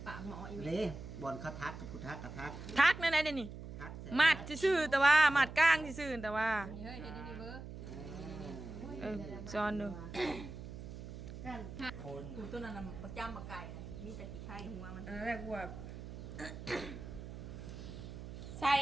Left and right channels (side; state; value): right; noise; hum, 10 dB below the sound